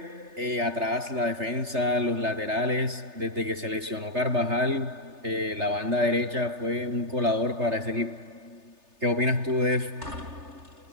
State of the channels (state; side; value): late; left; 3.3 ms